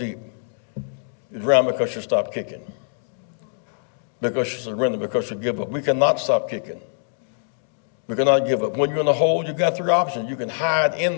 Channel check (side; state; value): right; silent; digital silence